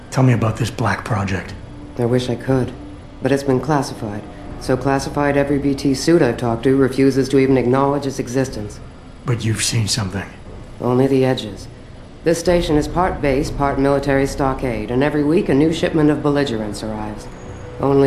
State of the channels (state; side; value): identical; both; correlation 1.00